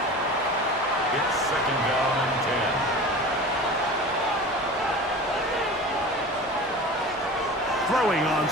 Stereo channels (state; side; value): normal; both; correlation 0.35